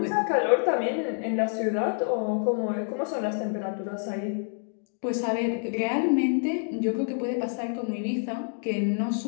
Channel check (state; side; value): silent; right; 60 dB below the other